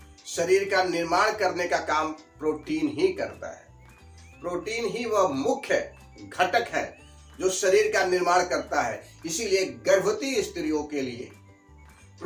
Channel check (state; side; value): identical; both; correlation 1.00